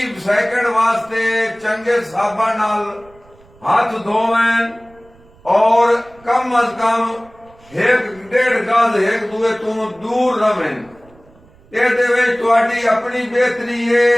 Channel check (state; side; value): noise; right; rumble, 28 dB below the sound